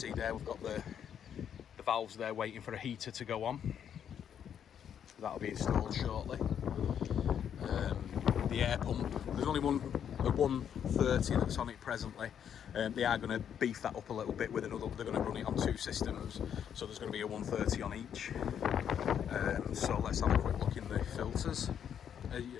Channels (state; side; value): quieter; right; 8.7 dB